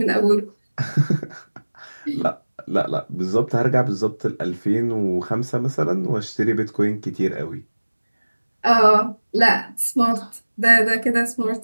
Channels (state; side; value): inverted; both; correlation -1.00